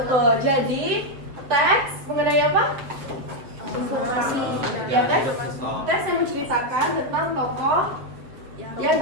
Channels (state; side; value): late; left; 7.6 ms